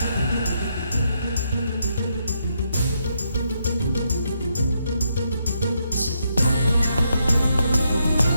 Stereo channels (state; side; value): inverted; both; correlation -0.78